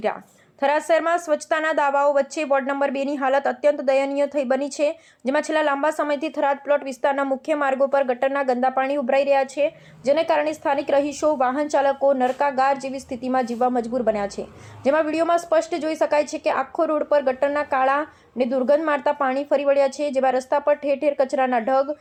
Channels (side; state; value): both; identical; correlation 1.00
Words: થરાદ શહેરમાં સ્વચ્છતાના દાવાઓ વચ્ચે વોર્ડ નંબર 2 ની હાલત અત્યંત દયનીય થઈ બની છે, જેમાં છેલ્લા લાંબા સમયથી થરાદ પ્લોટ વિસ્તારના મુખ્ય માર્ગો પર ગટરના ગંદા પાણી ઉભરાઈ રહ્યા છે, જેને કારણે સ્થાનિક રહીશો, વાહન ચાલકો નરકાગાર જેવી સ્થિતિમાં જીવવા મજબૂર બન્યા છે। જેમાં વિડીયોમાં સ્પષ્ટ જોઈ શકાય છે કે આખો રોડ પર ગટરના કાળા ને દુર્ગંધ મારતા પાણી ફરી વળ્યા છે, જેમાં રસ્તા પર ઠેર ઠેર કચરાના ઢગ